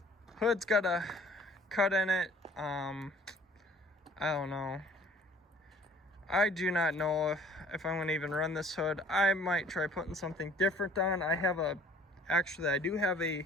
Hood's got a cut in it. I don't know. I do not know if I'm gonna even run this hood. I might try putting something different on. Actually, I do have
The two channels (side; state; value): both; normal; correlation 0.53